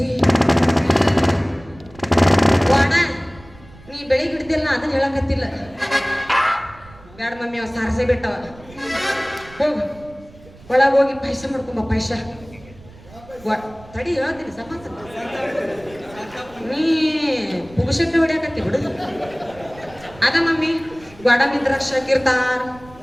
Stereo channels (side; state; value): right; noise; rumble, 22 dB below the sound